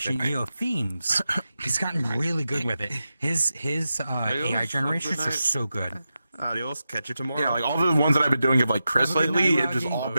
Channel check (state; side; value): inverted; both; correlation -0.91